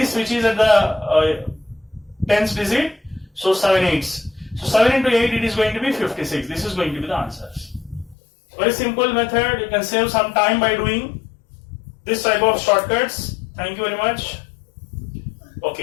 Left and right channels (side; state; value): right; drops out; at 8.2 s